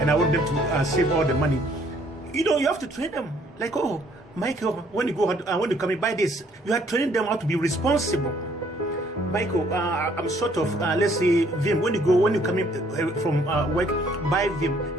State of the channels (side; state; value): both; normal; correlation 0.63